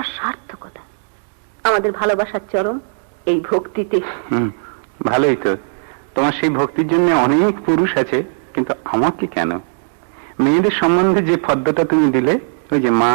সার্থকতা। আমাদের ভালোবাসার চরম এই ভক্তিতে। ভালোই তো, তোমার সেই ভক্তির জন্য অনেক পুরুষ আছে, কিন্তু আমাকে কেন? মেয়েদের সম্বন্ধে যে ফদ্দটা তুমি দিলে, ওই যে মা,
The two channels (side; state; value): left; silent; digital silence